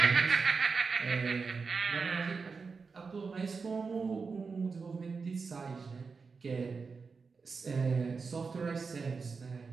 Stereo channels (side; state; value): left; quieter; 4.9 dB